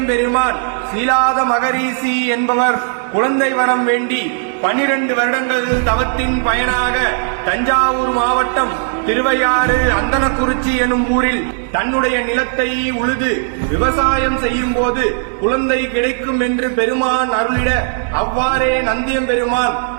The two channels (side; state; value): left; silent; 69 dB below the other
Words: சீலாத மகரிஷி என்பவர் குழந்தை வரம் வேண்டி 12 வருடங்கள் தவத்தின் பயனாக தஞ்சாவூர் மாவட்டம் திருவையாறு அந்தனக்குறிச்சி எனும் ஊரில் தன்னுடைய நிலத்தை உழுது விவசாயம் செய்யும் போது குழந்தை கிடைக்கும் என்று பெருமான் அருளிட அவ்வாறே நந்தியம்பெருமான்